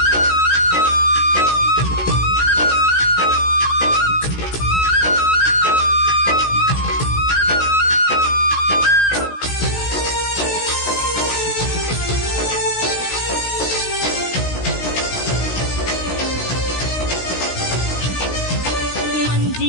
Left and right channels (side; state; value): right; late; 16 ms